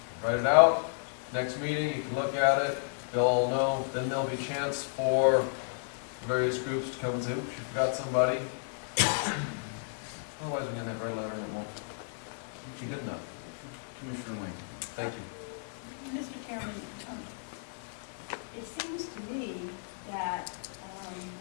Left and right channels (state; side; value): silent; right; 56 dB below the other